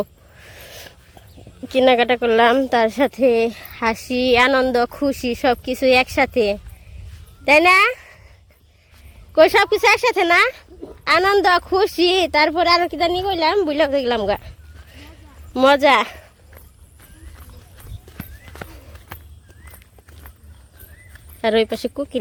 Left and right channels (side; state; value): both; identical; correlation 1.00